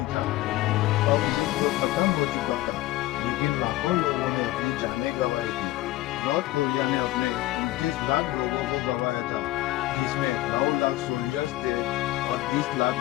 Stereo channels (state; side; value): quieter; right; 16.8 dB